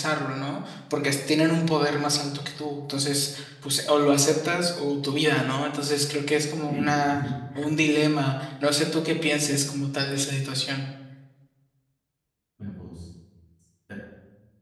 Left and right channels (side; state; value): both; identical; correlation 1.00